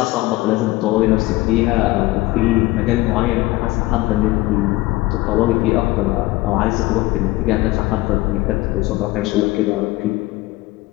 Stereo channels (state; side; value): quieter; right; 19.1 dB